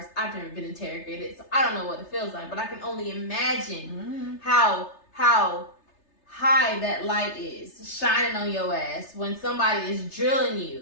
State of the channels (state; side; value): late; right; 3.3 ms